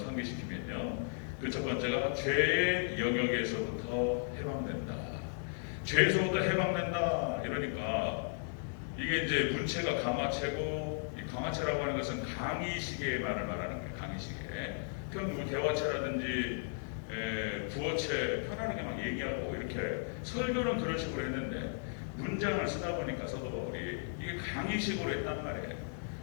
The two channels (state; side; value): silent; right; digital silence